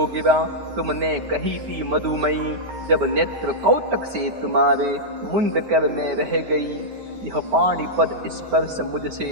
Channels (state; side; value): late; left; 14 ms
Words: गिरा तुमने कही थी मधुमयी, जब नेत्र कौतक से तुम्हारे मुंद कर में रह गई। यह पाणी पद स्पर्श मुझसे